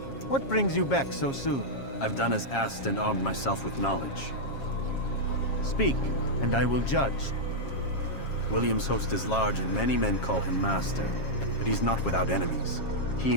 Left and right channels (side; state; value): right; late; 7.4 ms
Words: what brings you back so soon? I've done as asked and armed myself with knowledge. Speak, and I will judge. William's host is large and many men call him master, but he's not without enemies. He